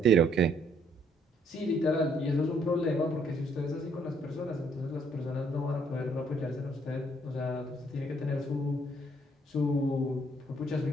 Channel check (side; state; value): both; normal; correlation 0.67